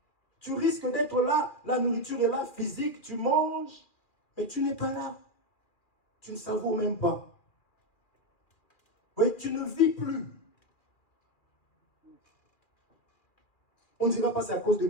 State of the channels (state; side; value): late; right; 2.4 ms